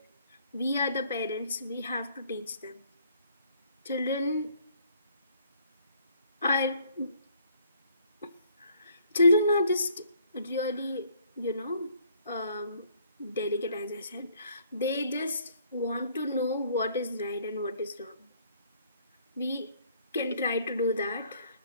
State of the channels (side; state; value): both; inverted; correlation -0.63